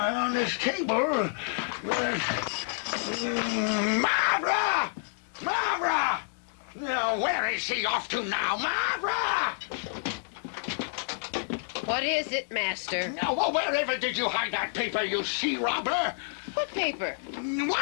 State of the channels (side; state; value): right; silent; digital silence